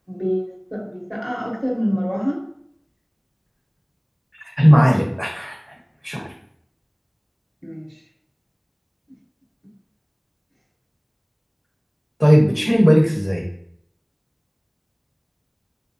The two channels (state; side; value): identical; both; correlation 1.00